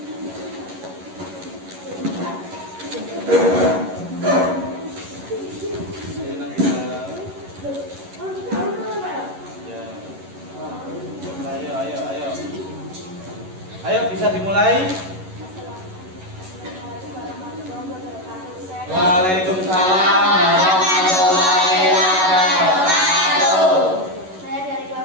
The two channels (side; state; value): left; late; 11 ms